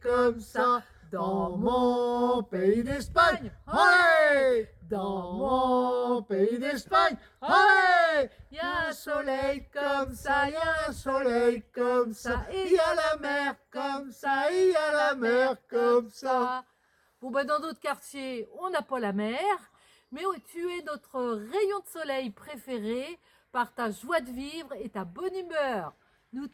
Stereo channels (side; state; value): both; identical; correlation 1.00